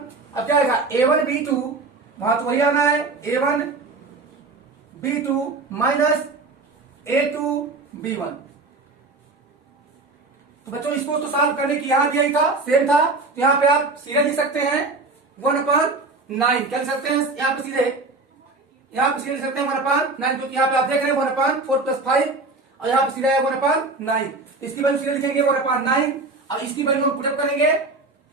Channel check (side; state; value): left; quieter; 3.5 dB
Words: अब क्या आएगा A1B2, वहां तो वही आना है A1B2 माइनस A2B1। तो बच्चों इसको तो सॉल्व करने की यहां दिया ही था, सेम था, तो यहां पे आप सीधे लिख सकते हैं 1/9, क्या लिख सकते हैं यहां पे सीधे, लिख सकते हैं 1/9, क्योंकि यहाँ पे आप देख रहे हैं 1/4 + 5 और यहाँ पे सीधा है 1/9, तो इसकी वैल्यू सीधे लिखेंगे 1/9। अब इसकी वैल्यू हम पुटअप करेंगे,